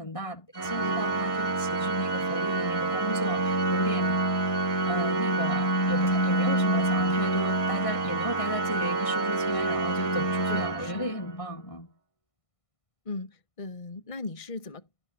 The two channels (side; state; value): right; late; 1.5 ms